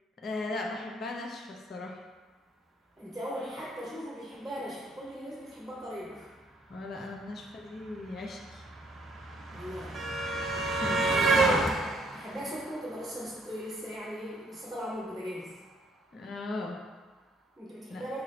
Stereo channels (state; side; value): normal; both; correlation 0.66